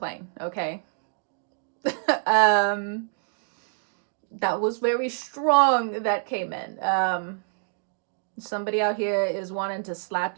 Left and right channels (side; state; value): left; silent; digital silence